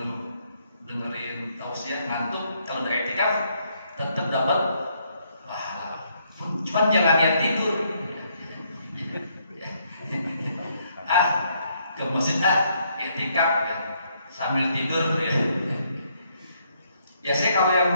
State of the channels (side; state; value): both; inverted; correlation -0.72